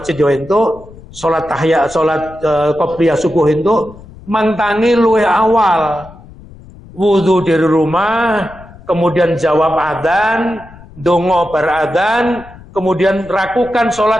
yo entuk, sholat qobliyah subuh entuk, mangtangi luwih awal. Wudu dari rumah, kemudian jawab adzan, dongo bar adzan, kemudian lakukan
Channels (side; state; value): left; noise; rumble, 20 dB below the sound